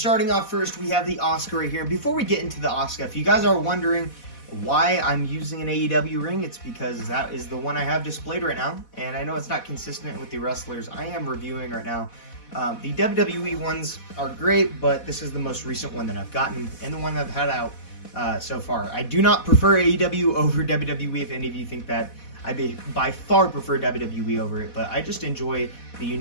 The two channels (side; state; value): right; late; 4.1 ms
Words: off first, we have the Asuka right here. And before we get into the Asuka, if you guys are wondering why I'm using an AEW ring, it's because that is the one I have displayed right now, and I know it's not consistent with the wrestlers I am reviewing right now. The WWE ones are great, but this is the most recent one that I've gotten and the one I've had out so far. I do not prefer AEW over WWE. If any of you think that, I by far prefer WWE over it, but I just enjoy the